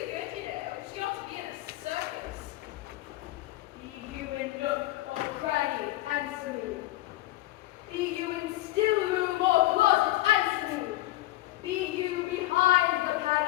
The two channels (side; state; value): right; quieter; 17.0 dB